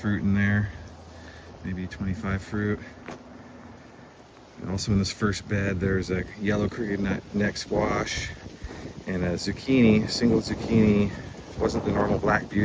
in there, maybe 25 fruit. And also in this first bed there's a yellow crooked neck squash and a zucchini, single zucchini. It wasn't the normal black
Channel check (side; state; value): both; identical; correlation 1.00